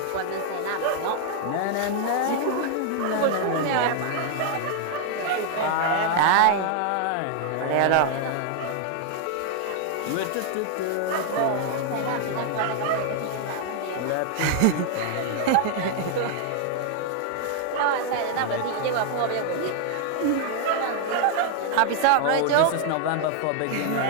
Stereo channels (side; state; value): both; different; correlation 0.00